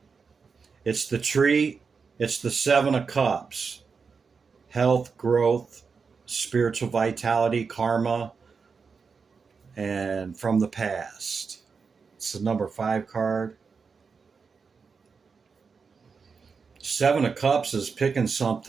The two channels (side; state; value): left; quieter; 5.3 dB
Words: It's the tree. It's the 7 of Cups. Health, growth, spiritual vitality, karma, and from the past. It's the number 5 card. 7 of Cups is picking